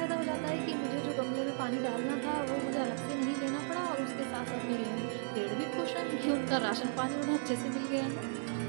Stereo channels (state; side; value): silent; left; digital silence